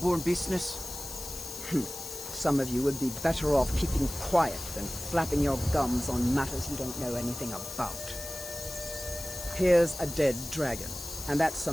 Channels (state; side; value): noise; left; hiss, 9 dB below the sound